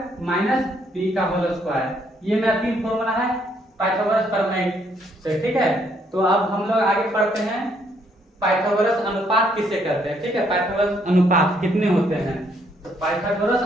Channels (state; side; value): normal; both; correlation 0.70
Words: माइनस B का होल स्क्वायर। ये मेरा तीन फॉर्मूला है पाइथागोरस प्रमेय से। ठीक है, तो अब हम लोग आगे पढ़ते हैं पाइथागोरस अनुपात किसे कहते हैं। ठीक है, पाइथागोरस अनुपात कितने होते हैं, तो पाइथागोरस